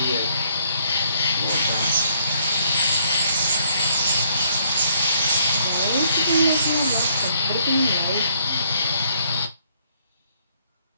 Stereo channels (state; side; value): inverted; both; correlation -0.67